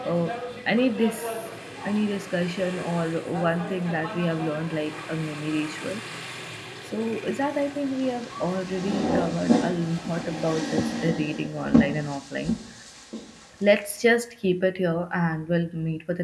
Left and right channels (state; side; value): identical; both; correlation 1.00